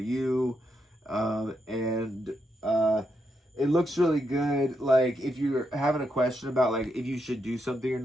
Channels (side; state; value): both; normal; correlation 0.82